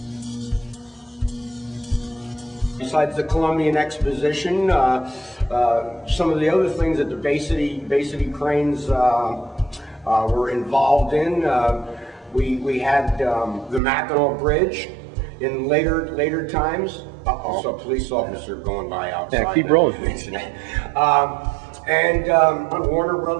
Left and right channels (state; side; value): drops out; left; at 13.8 s